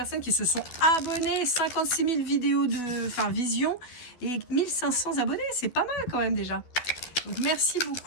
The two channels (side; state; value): right; late; 12 ms